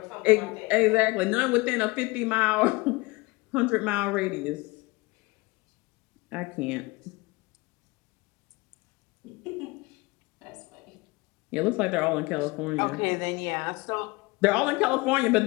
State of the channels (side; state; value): right; quieter; 23.9 dB